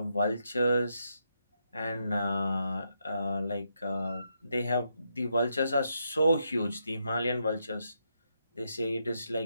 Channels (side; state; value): both; inverted; correlation -0.81